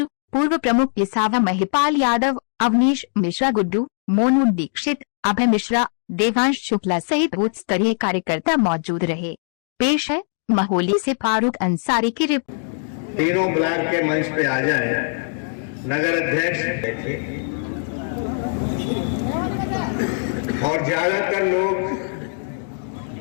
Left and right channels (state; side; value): silent; right; 60 dB below the other